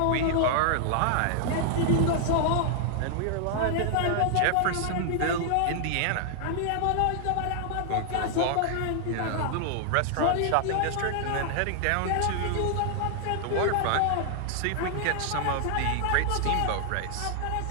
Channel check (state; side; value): different; both; correlation 0.00